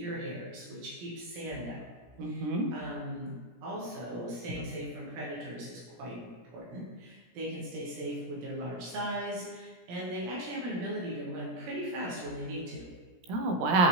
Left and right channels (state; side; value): late; left; 17 ms